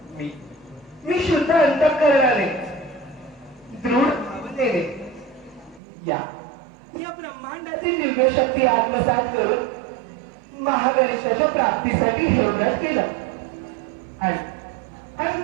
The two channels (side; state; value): left; drops out; at 5.8 s